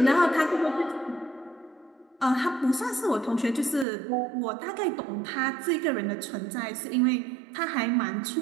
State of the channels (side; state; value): left; drops out; at 3.9 s